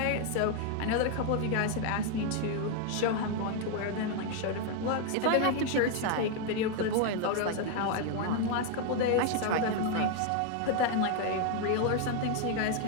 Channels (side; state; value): both; different; correlation 0.00